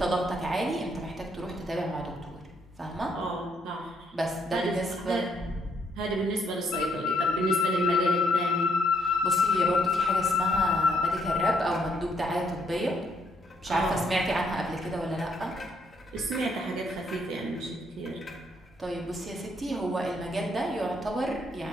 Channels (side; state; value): both; normal; correlation 0.72